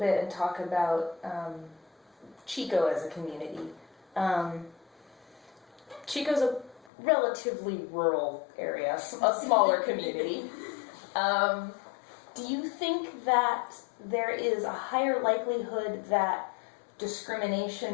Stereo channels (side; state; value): right; drops out; at 6.9 s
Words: and talk about Chico as a community. Chico's a relatively rural area, a smaller community. Do you think that there is a higher likelihood that